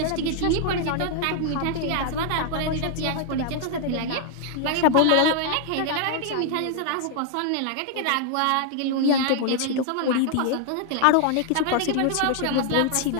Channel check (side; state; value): both; different; correlation 0.00